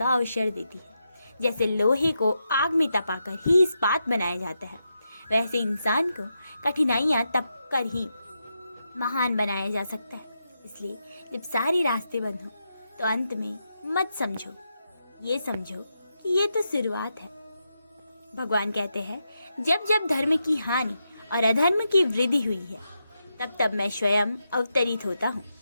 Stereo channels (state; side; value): inverted; both; correlation -0.86